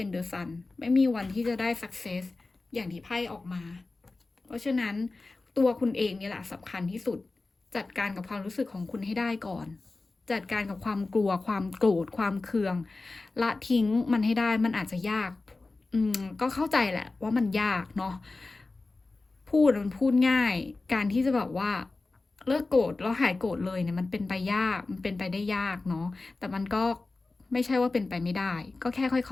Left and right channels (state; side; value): quieter; right; 3.5 dB